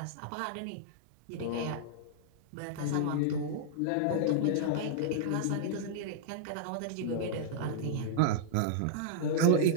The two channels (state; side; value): different; both; correlation -0.02